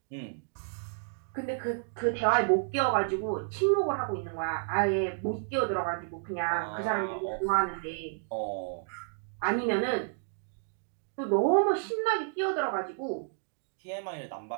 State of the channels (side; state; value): left; silent; digital silence